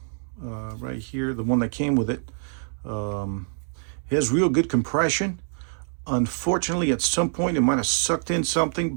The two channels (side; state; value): left; silent; digital silence